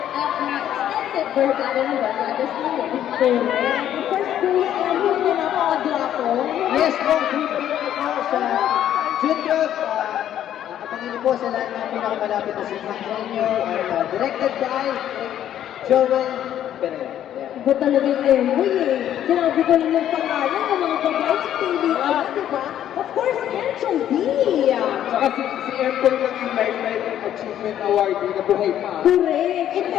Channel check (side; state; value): right; quieter; 11.0 dB